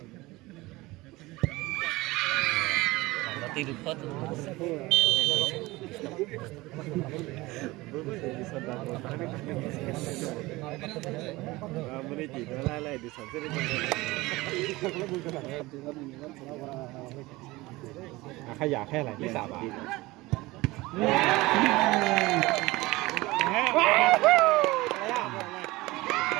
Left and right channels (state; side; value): quieter; left; 20.6 dB